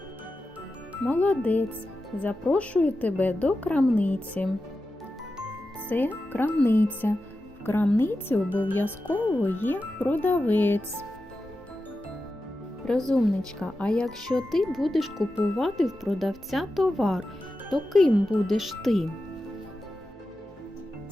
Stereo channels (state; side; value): normal; both; correlation 0.92